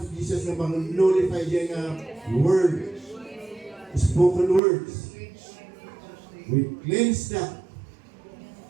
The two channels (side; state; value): left; drops out; at 4.6 s